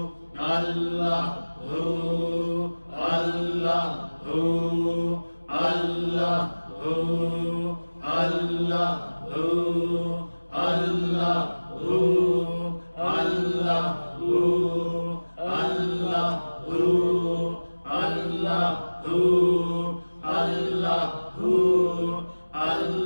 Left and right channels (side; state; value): both; inverted; correlation -1.00